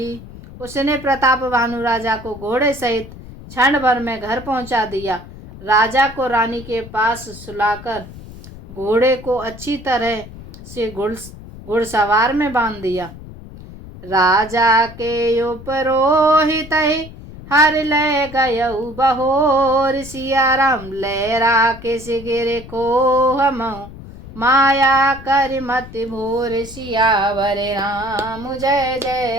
उसने प्रताप भानु राजा को घोड़े सहित क्षण भर में घर पहुंचा दिया। राजा को रानी के पास सुलाकर घोड़े को अच्छी तरह से घुड़सवार में बांध दिया। राजा के उपरोहित हर ले गयऊ बहोर, सिया राम लहरा के सिगिर को हम माया कर मत भोर। सियावर राम जय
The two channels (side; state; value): left; noise; rumble, 16 dB below the sound